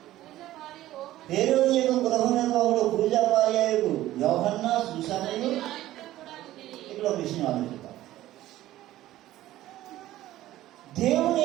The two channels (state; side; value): quieter; left; 14.8 dB